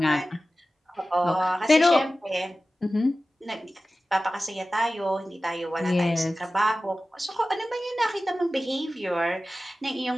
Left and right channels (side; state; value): both; normal; correlation 0.96